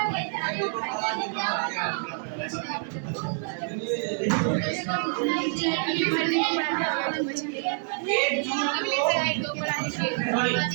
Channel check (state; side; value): silent; left; 58 dB below the other